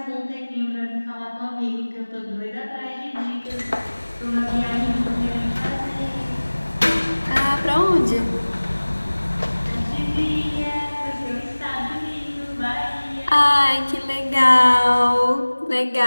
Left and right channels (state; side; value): inverted; both; correlation -1.00